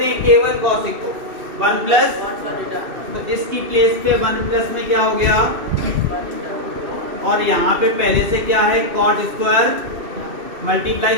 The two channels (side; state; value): left; late; 2.6 ms